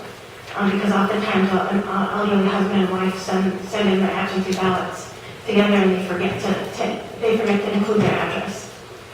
Because oftentimes an elderly husband and wife send in their absentee ballots together, and they forget to include their address.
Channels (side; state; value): both; identical; correlation 1.00